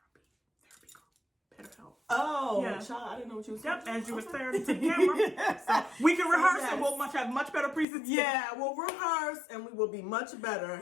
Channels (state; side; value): drops out; right; at 7.9 s